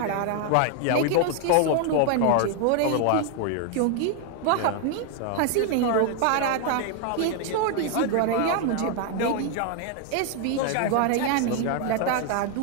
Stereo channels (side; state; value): both; different; correlation 0.00